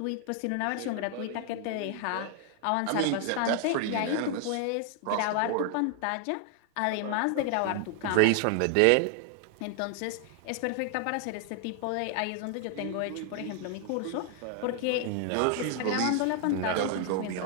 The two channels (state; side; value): different; both; correlation 0.00